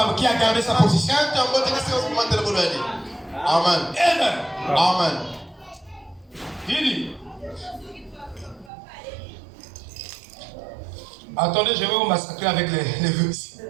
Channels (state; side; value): drops out; left; at 8.7 s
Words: qui a gardé sa position. Amen. Amen. Amen. Il dit. Attendez, je vais vous massacrer avec les vœux ici.